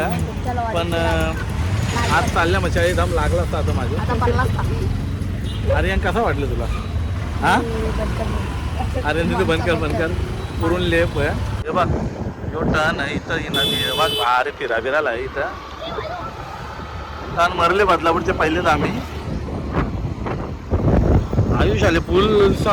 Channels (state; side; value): identical; both; correlation 1.00